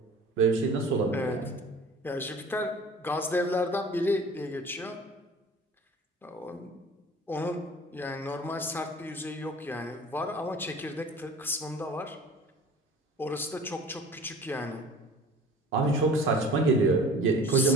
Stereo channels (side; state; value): both; normal; correlation 0.44